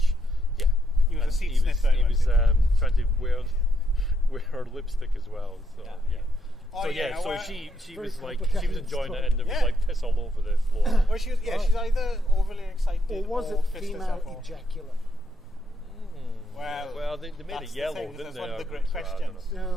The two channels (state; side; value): normal; both; correlation 0.77